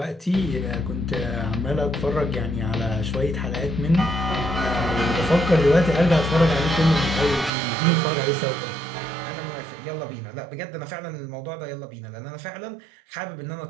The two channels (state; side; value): drops out; left; at 7.5 s